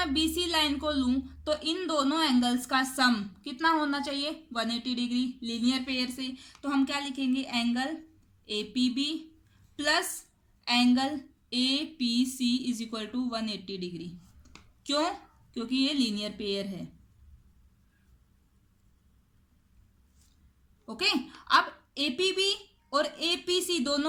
BC लाइन को लूं तो इन दोनों एंगल्स का सम कितना होना चाहिए? 180 डिग्री लीनियर पेयर से। तो हम क्या लिखेंगे? Angle APB plus angle APC is equal to 180 degree. क्यों? क्योंकि ये लीनियर पेयर है। ओके, अब APB और APC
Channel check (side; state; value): both; identical; correlation 1.00